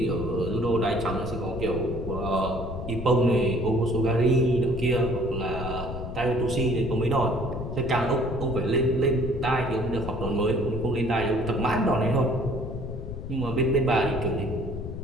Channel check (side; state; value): left; noise; rumble, 8 dB below the sound